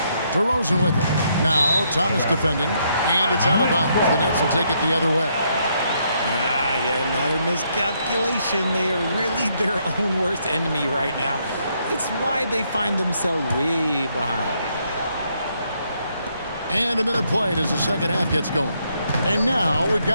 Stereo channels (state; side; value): inverted; both; correlation -0.74